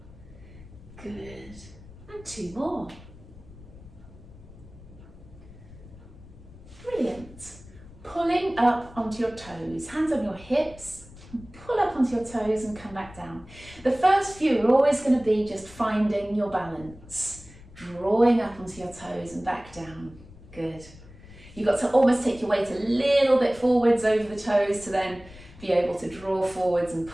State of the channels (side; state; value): left; noise; rumble, 19 dB below the sound